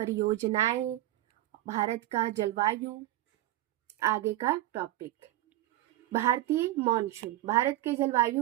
भारत का जलवायु। आगे का टॉपिक भारतीय मॉनसून। भारत के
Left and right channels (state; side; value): quieter; left; 15.2 dB